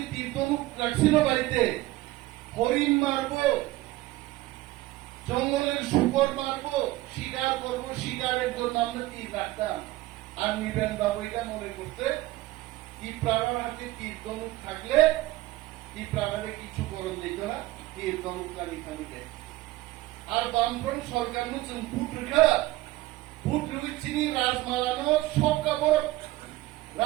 তীর ধনুক রাখছিল বাড়িতে হরিণ মারবো জঙ্গলের শুকর মারবো শিকার করবো শিকারের জন্য আমরা তীর রাখতাম আর নিবেন বাবু এটা মনে করতে ত্রিপুরার হাতে তীর ধনুক থাকলে ত্রিপুরারে কিছু করণ দিত না তীর ধনুক কানিকে আর বামফ্রন্ট সরকার নতুন ভোট চিনি রাজমালানো সব কাপড়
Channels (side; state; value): left; quieter; 17.7 dB